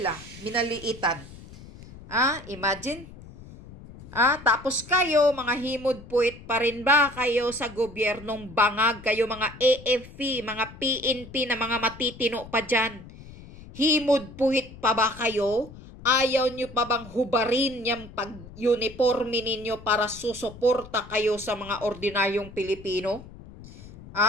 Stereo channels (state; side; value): noise; left; rumble, 17 dB below the sound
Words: minaliitan. Imagine. Tapos kayo, mga himod-puwit pa rin ba kayo sa gobyernong bangag? Kayo mga AFP, mga PNP na mga matitino pa dyan. Himod-puwit pa ba kayo? Ayaw nyo pa bang hubarin yung pag-uniforme ninyo para susuporta kayo sa mga ordinaryong Pilipino?